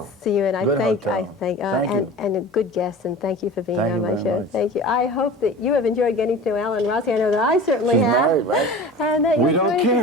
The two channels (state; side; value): normal; both; correlation 0.37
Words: see you, and I Good thank, hotel. Thank you. and a good guest, and thank you for being Thank on you my very show. much. Thank you. I hope that you have enjoyed getting to know Alan Rossi. I know that I certainly She's have. married, right? And that you'll We don't join us